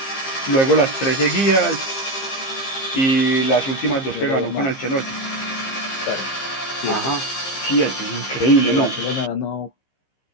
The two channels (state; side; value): late; right; 15 ms